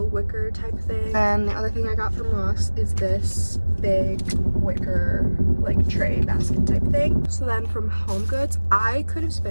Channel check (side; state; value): both; inverted; correlation -1.00